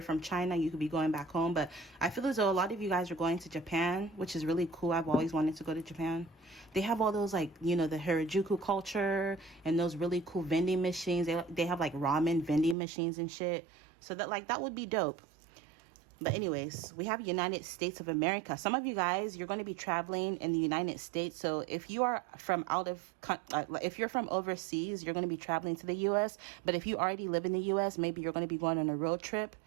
from China, you could be going back home. But I feel as though a lot of you guys are going to Japan, which is really cool. I've always wanted to go to Japan. They have all those, like, you know, the Harajuku culture and those really cool vending machines. They have like ramen vending machines and shit. So that, like, that would be dope. But anyways, we have United States of America. Some of you guys, you're going to be traveling in the United States. So if you are from if you're from overseas, you're going to be traveling to the U.S. But if you already live in the U.S., maybe you're going to be going on a road trip.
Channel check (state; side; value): drops out; left; at 12.8 s